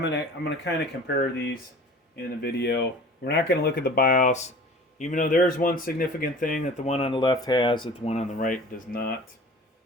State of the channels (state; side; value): normal; both; correlation 0.43